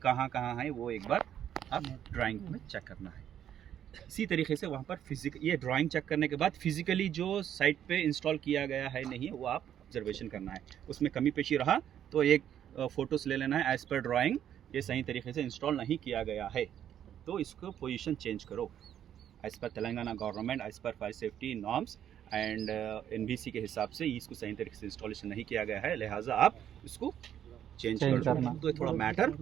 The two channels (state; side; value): quieter; left; 10.1 dB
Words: कहाँ कहाँ हैं वो एक बार आप ड्राइंग में चेक करना है। इसी तरीके से वहाँ पर ये ड्राइंग चेक करने के बाद फिजिकली जो साइट पे इंस्टॉल किया गया है नहीं है वो आप ऑब्जर्वेशन करना है, उसमें कमी पेशी रहा तो एक फ़ोटोज़ ले लेना है, एज़ पर ड्राइंग ये सही तरीके से इंस्टॉल नहीं किया गया है तो इसको पोजीशन चेंज करो as per Telangana government, as per fire safety norms and NBC के हिसाब से इसको सही तरीके से इंस्टॉलेशन नहीं किया गया है, लिहाजा आप इसको चेंज करना। तो थोड़ा मैटर